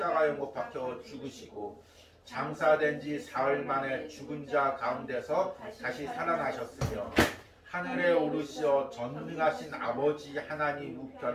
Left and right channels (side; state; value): both; identical; correlation 1.00